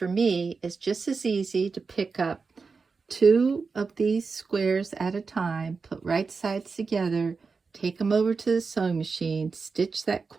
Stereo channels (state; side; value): quieter; left; 4.7 dB